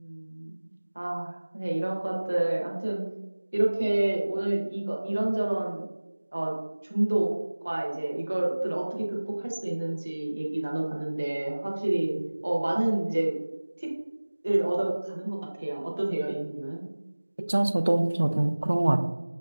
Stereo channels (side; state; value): both; inverted; correlation -1.00